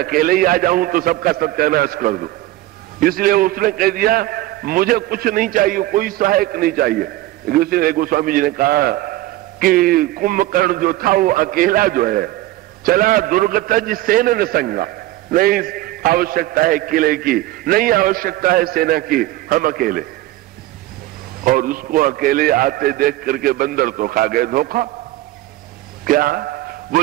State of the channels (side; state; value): left; quieter; 16.5 dB